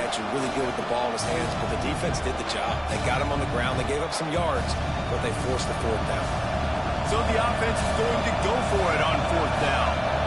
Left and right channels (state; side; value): identical; both; correlation 1.00